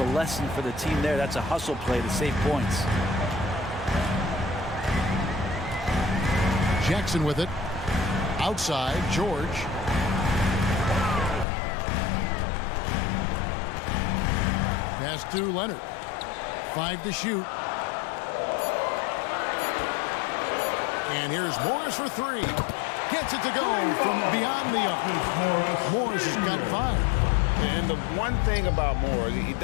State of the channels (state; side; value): drops out; right; at 11.5 s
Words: lesson for the team there. That's a hustle play to save points. Jackson with it. Outside, George. Pass to Leonard. 5 to shoot. And here's Morris for 3. Gets it to go from beyond the arc. Morris has got 5. And the one thing about Morris, he